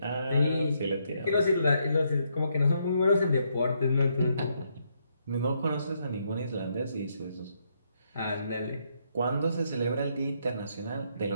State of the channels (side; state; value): both; inverted; correlation -0.76